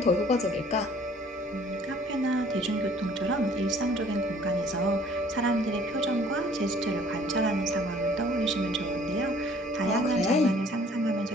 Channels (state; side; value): normal; both; correlation 0.55